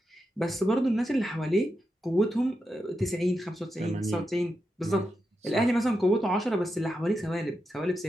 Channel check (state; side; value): normal; both; correlation 0.87